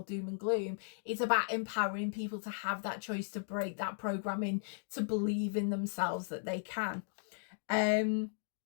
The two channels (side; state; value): right; silent; digital silence